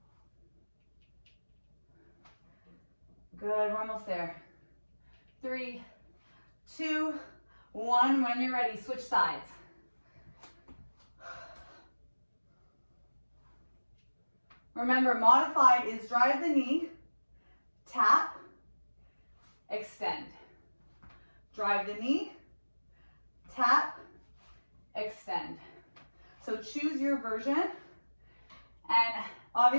Good, we're almost there. 3, 2, 1. When you're ready, switch sides. Remember, modified is drive the knee, tap, extend. Drive the knee, tap, extend. So choose your version. And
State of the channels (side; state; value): both; inverted; correlation -1.00